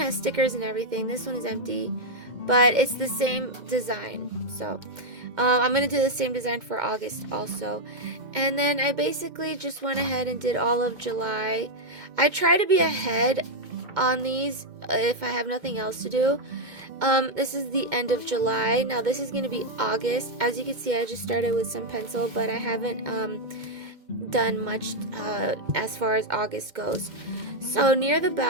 stickers and everything. This one is empty, but it's the same design. So I'm going to do the same design for August also. And then I basically just went ahead and did all of July. I try to be ahead on these if I have nothing else to do. This is the end of July. Now this is going to be August. As you can see, I just started with some pencil, but I haven't done much as far as August goes. So near the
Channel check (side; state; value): left; late; 2.1 ms